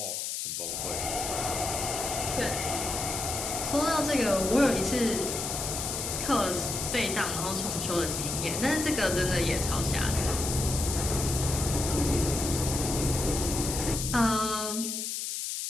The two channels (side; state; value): left; noise; hiss, 3 dB below the sound